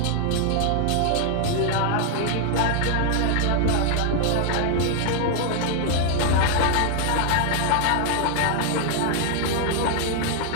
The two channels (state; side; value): different; both; correlation 0.00